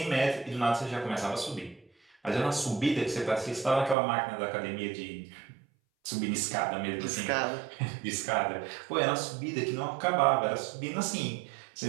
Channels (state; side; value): drops out; left; at 4.0 s